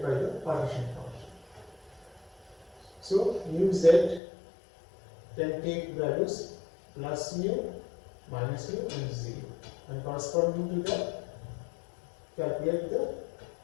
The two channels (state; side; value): drops out; right; at 4.2 s